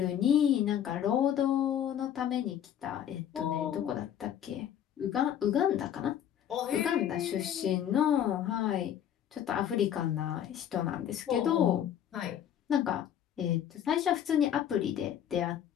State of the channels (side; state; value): right; quieter; 9.9 dB